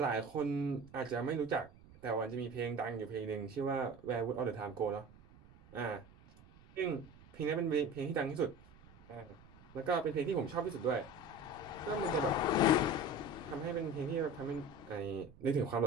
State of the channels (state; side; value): noise; right; rumble, 23 dB below the sound